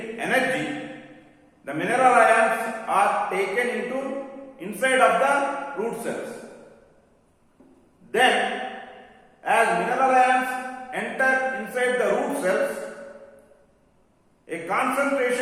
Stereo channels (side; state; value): both; identical; correlation 1.00